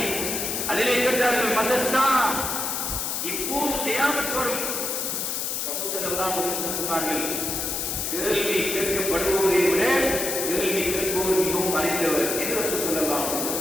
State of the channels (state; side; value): noise; left; hiss, 1 dB below the sound